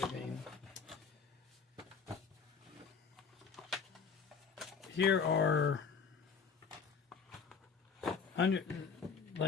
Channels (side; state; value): right; quieter; 5.7 dB